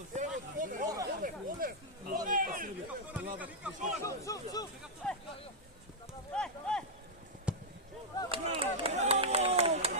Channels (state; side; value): normal; both; correlation -0.06